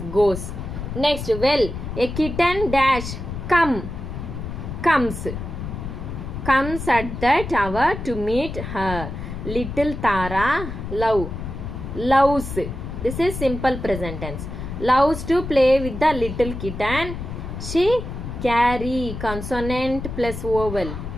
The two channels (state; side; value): noise; left; rumble, 7 dB below the sound